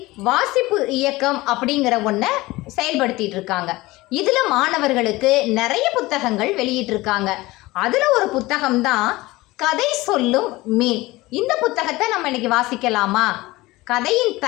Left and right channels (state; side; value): quieter; right; 19.9 dB